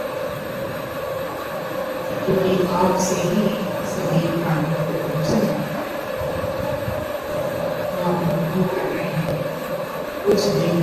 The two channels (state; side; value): identical; both; correlation 1.00